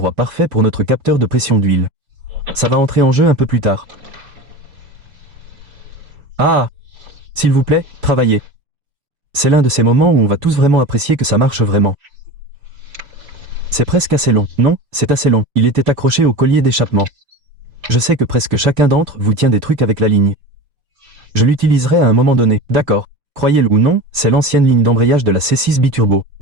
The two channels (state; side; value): late; left; 4.9 ms